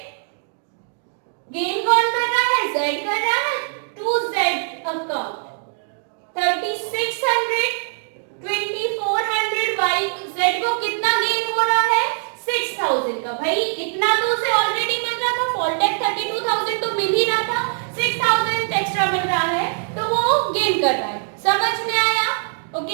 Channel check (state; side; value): silent; left; 64 dB below the other